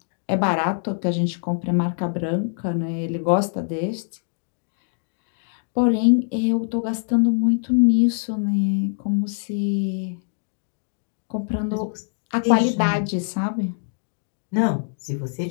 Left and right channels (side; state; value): right; silent; digital silence